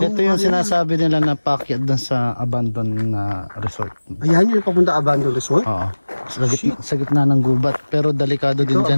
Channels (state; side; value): inverted; both; correlation -1.00